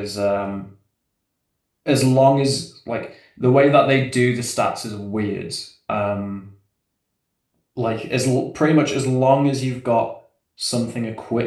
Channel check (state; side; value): identical; both; correlation 1.00